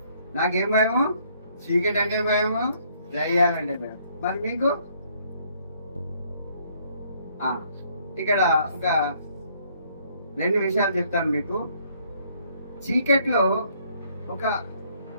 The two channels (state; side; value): inverted; both; correlation -0.66